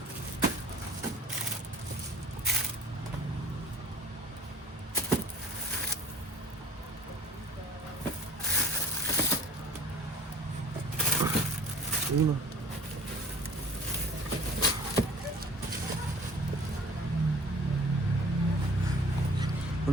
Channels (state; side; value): normal; both; correlation 0.47